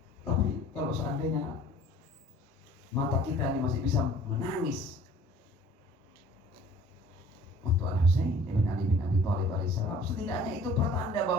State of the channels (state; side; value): normal; both; correlation 0.51